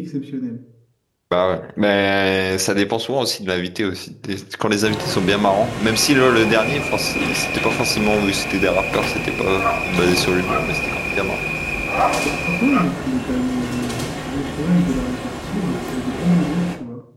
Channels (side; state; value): both; identical; correlation 1.00